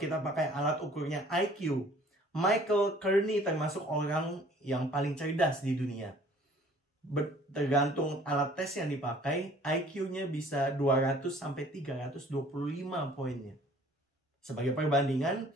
pakai alat ukurnya IQ, Michael Kearney termasuk orang yang paling cerdas di dunia. Tergantung alat tes yang dipakai, IQ-nya bisa 200 sampai 325 poinnya. Sebagai perbandingan,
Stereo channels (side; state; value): both; normal; correlation 0.53